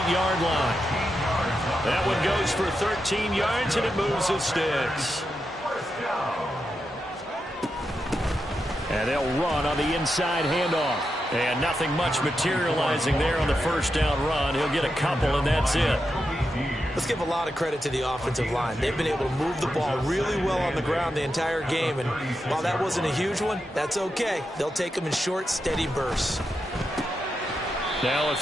line. That one goes for 13 yards, and it moves his sticks. And they'll run on the inside handoff. And nothing much materializing there on the first down run. He'll get a couple, and that's it. Let's give a lot of credit to the offensive line. They've been able to move the ball really well on the ground the entire game. And while that wasn't a huge one, that's okay. They'll take them in short, steady bursts. Now a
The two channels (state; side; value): normal; both; correlation 0.87